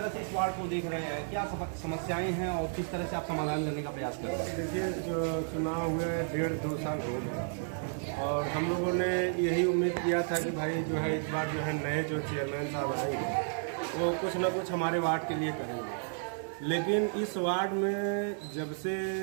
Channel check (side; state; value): left; silent; digital silence